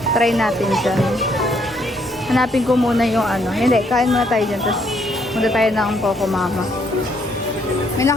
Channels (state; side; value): normal; both; correlation 0.70